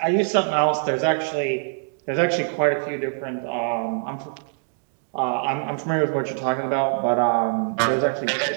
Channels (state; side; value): silent; left; 63 dB below the other